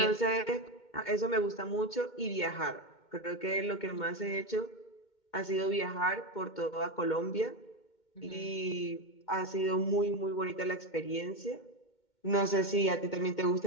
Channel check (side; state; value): right; late; 2.2 ms